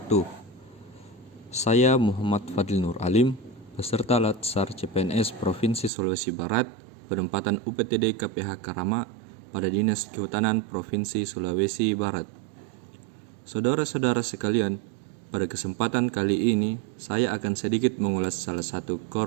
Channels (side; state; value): left; drops out; at 5.9 s